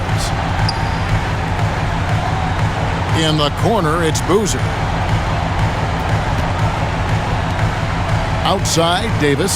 In the corner, it's Boozer. Outside,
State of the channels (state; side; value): identical; both; correlation 1.00